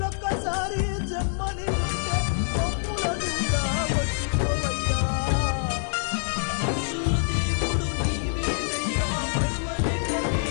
జన్మని ఉంటే మమ్ములనుగా వచ్చిపోవయ్యా మనుషుల దేవుడు నీవేనయ్యా మరువలేక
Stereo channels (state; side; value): silent; right; 61 dB below the other